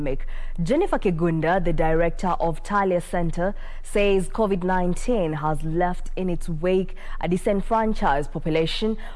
Jennifer Kigunda, the director of Talia Center, says COVID-19 has left in its wake a disenfranchised population,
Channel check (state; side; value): identical; both; correlation 1.00